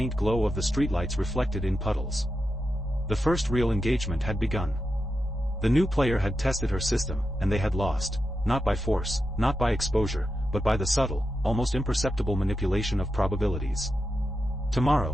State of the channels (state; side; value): normal; both; correlation 0.88